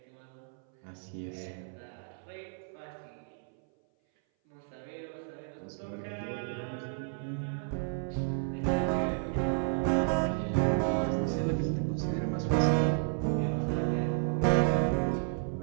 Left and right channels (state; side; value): silent; left; 56 dB below the other